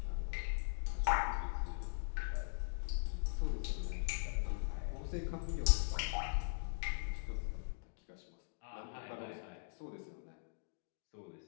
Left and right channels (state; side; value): silent; right; digital silence